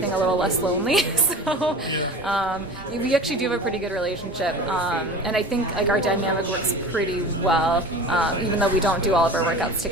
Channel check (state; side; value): normal; both; correlation 0.36